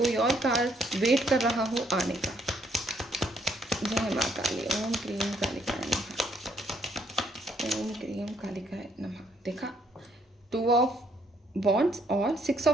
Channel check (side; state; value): both; normal; correlation 0.69